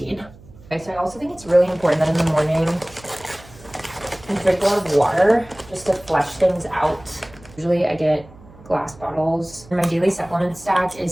Okay, so I also think it's really important that in the morning I drink a lot of water just to flush things out. Usually I get glass bottles. And my daily supplement stack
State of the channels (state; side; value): noise; right; hum, 22 dB below the sound